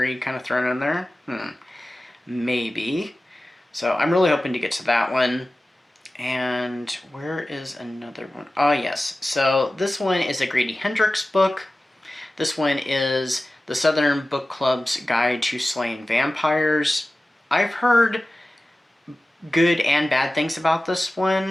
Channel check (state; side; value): normal; both; correlation 0.96